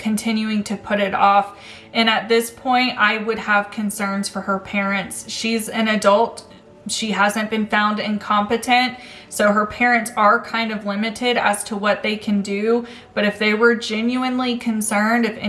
to put it off. And at this point, I would have concerns for her parents. She's an adult. She hasn't been found incompetent, so her parents are kind of limited as to what they can do. But if they were genuinely concerned, if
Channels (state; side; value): identical; both; correlation 1.00